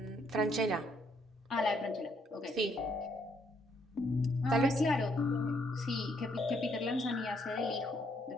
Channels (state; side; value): normal; both; correlation 0.71